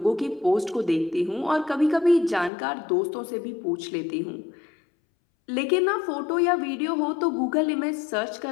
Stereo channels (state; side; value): drops out; right; at 2.5 s